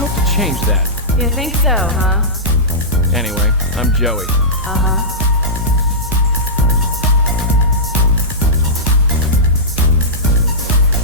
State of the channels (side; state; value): both; normal; correlation -0.17